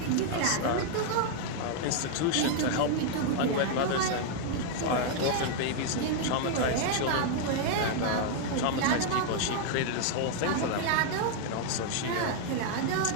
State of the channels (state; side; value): different; both; correlation 0.00